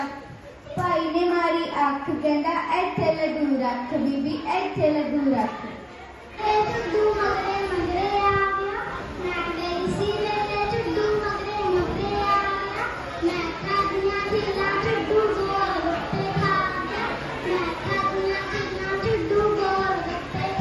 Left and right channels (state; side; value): identical; both; correlation 1.00